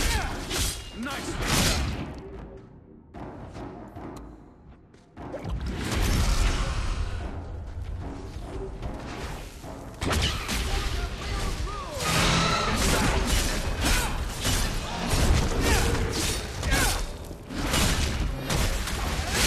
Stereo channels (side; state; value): both; identical; correlation 1.00